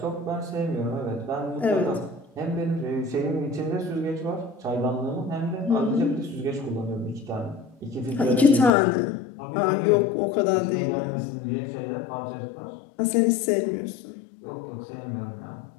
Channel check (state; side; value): drops out; right; at 8.7 s